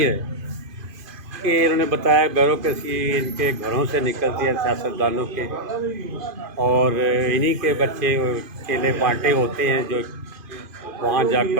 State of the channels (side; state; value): left; late; 2.5 ms